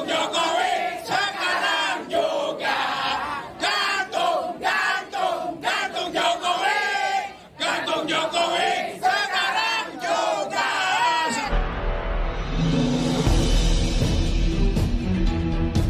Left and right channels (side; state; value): both; identical; correlation 1.00